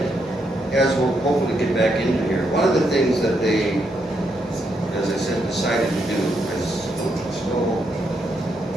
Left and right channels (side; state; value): both; normal; correlation 0.79